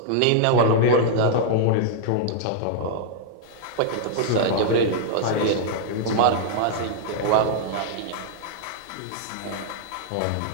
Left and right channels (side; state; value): both; different; correlation -0.01